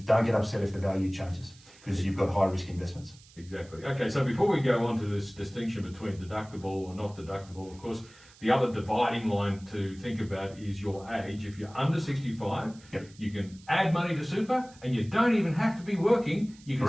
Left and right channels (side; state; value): right; noise; hiss, 24 dB below the sound